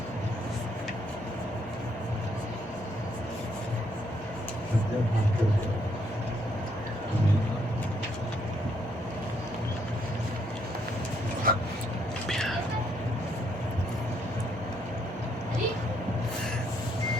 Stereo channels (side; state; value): both; normal; correlation 0.72